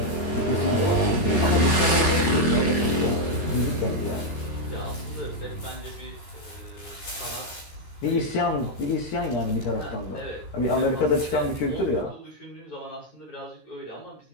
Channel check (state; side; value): late; right; 13 ms